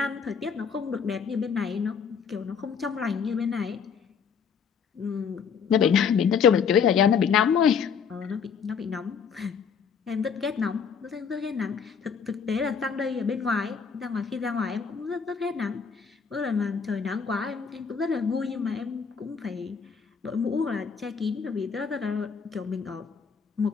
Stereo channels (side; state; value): right; quieter; 6.5 dB